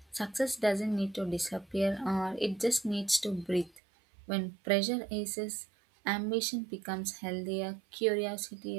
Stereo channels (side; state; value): left; drops out; at 3.8 s